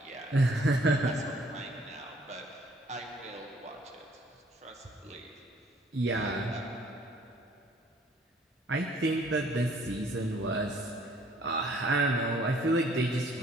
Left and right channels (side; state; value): both; normal; correlation 0.60